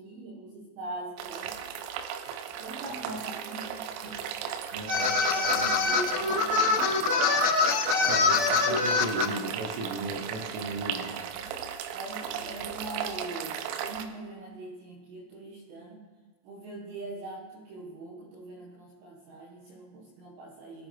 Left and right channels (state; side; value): late; left; 28 ms